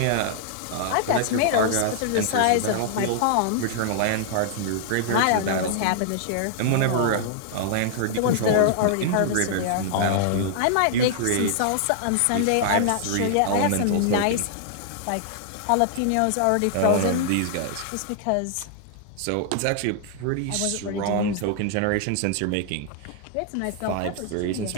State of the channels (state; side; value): different; both; correlation -0.01